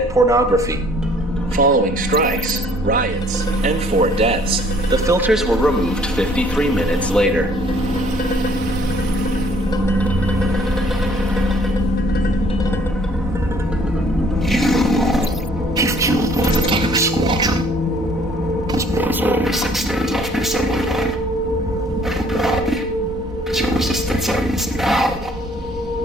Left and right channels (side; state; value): both; normal; correlation 0.59